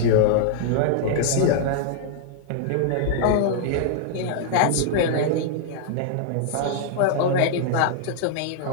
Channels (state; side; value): different; both; correlation -0.01